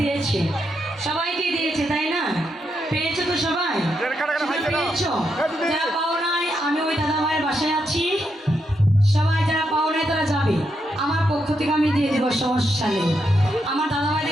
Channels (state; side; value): normal; both; correlation 0.82